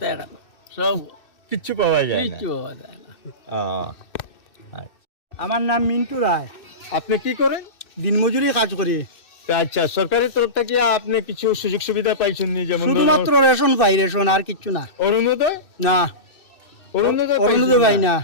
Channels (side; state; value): right; late; 2.6 ms